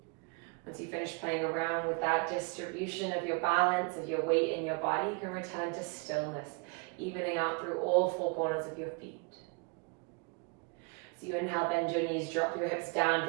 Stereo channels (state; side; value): quieter; left; 32.3 dB